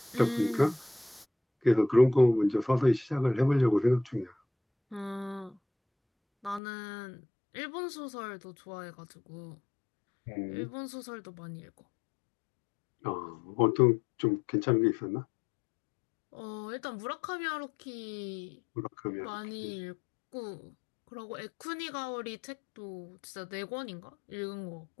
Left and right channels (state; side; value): drops out; right; at 6.6 s